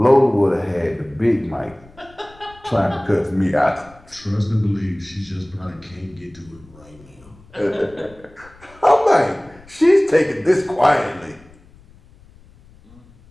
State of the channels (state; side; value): noise; left; rumble, 25 dB below the sound